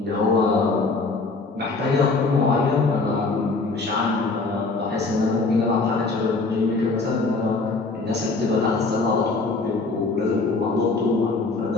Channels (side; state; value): right; quieter; 3.8 dB